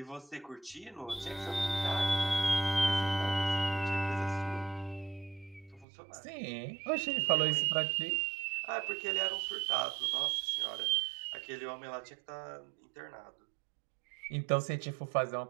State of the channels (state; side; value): drops out; left; at 5.9 s